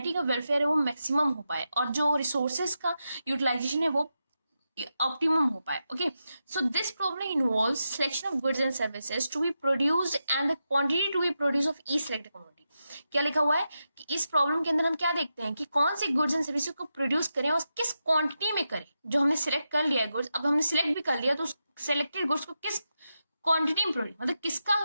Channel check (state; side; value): inverted; both; correlation -0.88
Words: का वेलफेयर है वो मैक्सिमम हो पाए और जो रिसोर्सेज का यूटिलाइजेशन है वो ऑप्टिमम हो पाए। Okay, so this problem involves selection of goods and services to be produced and the quantity to be produce of each selected commodity. क्या लिखा हुआ है कि इस प्रॉब्लम के अंदर हम क्या देखते हैं कि कौन सी गुड्स एंड सर्विसेज को प्रोड्यूस करें और किस क्वांटिटी में करें। जो हमने सिलेक्ट कर लिया है गुड्स, अब हमने सिलेक्ट भी कर लिया तो उस सिलेक्टेड गुड्स को किस क्वांटिटी में प्रोड्यूस, मतलब किसका